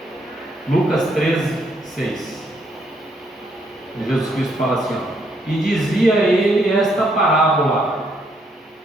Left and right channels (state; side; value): normal; both; correlation 0.73